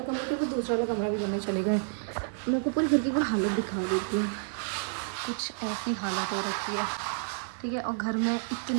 कमरा के, तो दूसरा वाला कमरा भी करने चले गए। मैं आपको पूरी घर की वो हालत दिखा देती हूँ। कुछ ऐसी हालत हो रखी है, ठीक है। और घर में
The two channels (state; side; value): silent; left; 58 dB below the other